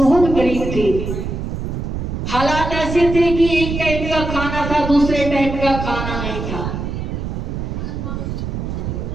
गरीब थी, हालात ऐसे थे कि एक टाइम का खाना था, दूसरे टाइम का खाना नहीं था।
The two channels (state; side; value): noise; right; rumble, 4 dB below the sound